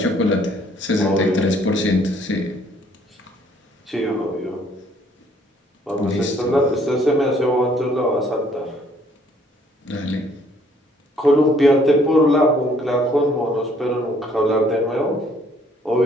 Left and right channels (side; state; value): both; normal; correlation 0.63